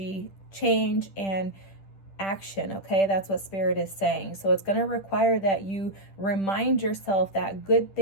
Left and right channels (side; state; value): right; late; 10 ms